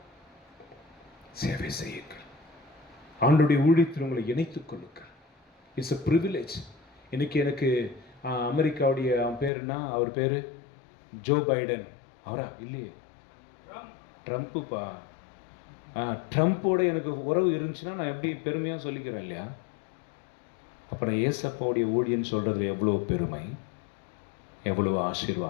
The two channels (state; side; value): drops out; right; at 9.5 s